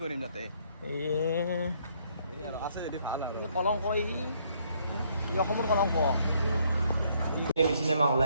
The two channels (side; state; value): both; inverted; correlation -0.68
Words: কৰিম তাতে আছে যদি ভাল আৰু কলংক ই অসমৰ কলংক চিনেমা হল